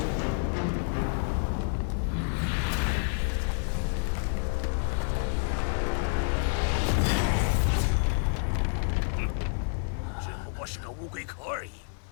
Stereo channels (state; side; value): silent; right; 59 dB below the other